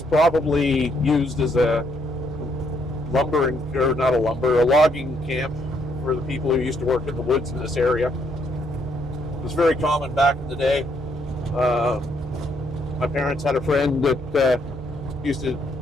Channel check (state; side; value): normal; both; correlation 0.72